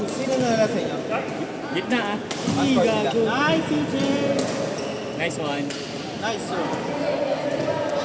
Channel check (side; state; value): both; identical; correlation 1.00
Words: sino nanalo sa inyo? Gitna ah. Ay, Ay, gago. Nice, CJ. Nice one. Nice, sir.